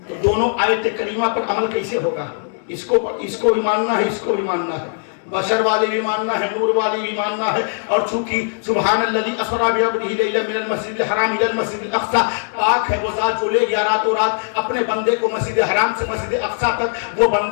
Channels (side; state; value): right; silent; digital silence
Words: तो दोनों आयत करीमा पर अमल कैसे होगा? इसको भी मानना है, इसको भी मानना है, बशर वाली भी मानना है, नूर वाली भी मानना है। और चूंकि सुब्हानल्लज़ी अस्रा बिअब्दिही लैलन मिनल मस्जिदिल हराम इलल मस्जिदिल अक़सा, पाक है वो ज़ात जो ले गया रातों रात अपने बंदे को मस्जिद हराम से मस्जिद अक़सा तक। वो